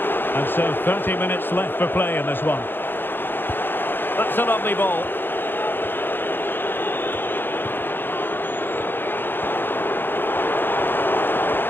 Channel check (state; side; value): late; right; 0.099 ms